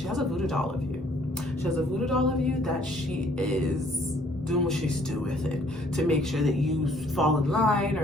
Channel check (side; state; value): both; normal; correlation 0.61